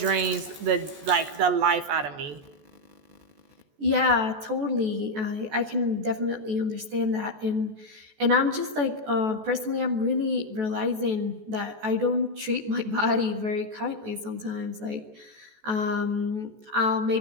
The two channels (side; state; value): left; late; 14 ms